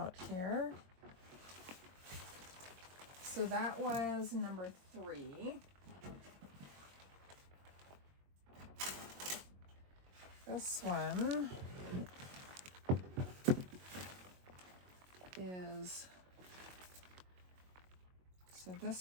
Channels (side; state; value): left; late; 22 ms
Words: here. So that was number 3. This one is, so